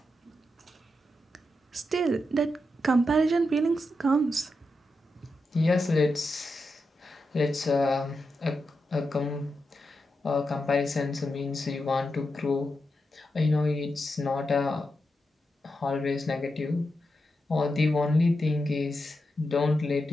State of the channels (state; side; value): normal; both; correlation 0.87